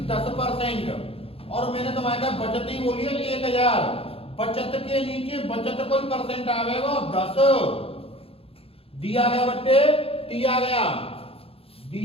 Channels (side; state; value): right; late; 0.27 ms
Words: 10%। और मैंने तुम्हारे का बचत ही बोली है 1000। बचत के नीचे बचत कोई परसेंट आवेगा 10 दिया गया बच्चे, दिया गया